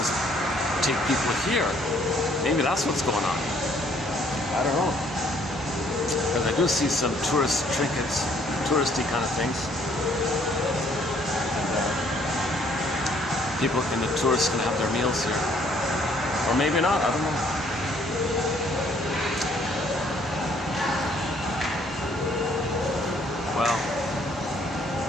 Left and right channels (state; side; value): normal; both; correlation 0.64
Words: take people here. Maybe that's what's going on. I don't know. Because I do see some tourist trinkets, touristy kind of things. And people and the tourists can have their meals here. Or maybe not, I don't know. Well,